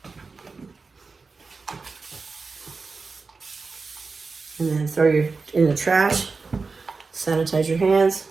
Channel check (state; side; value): quieter; left; 4.3 dB